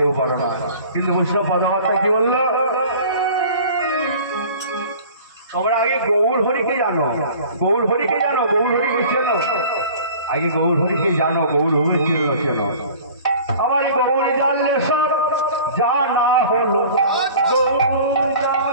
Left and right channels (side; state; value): both; inverted; correlation -0.44